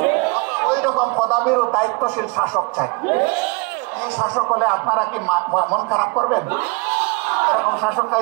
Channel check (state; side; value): quieter; left; 28.8 dB